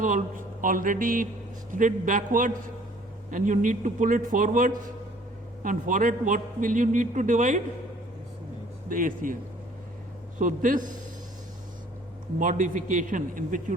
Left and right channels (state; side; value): normal; both; correlation 0.56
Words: already slid backwards, and you need to pull it forwards, and for it what will you need to divide? The ACL. So this modification in which you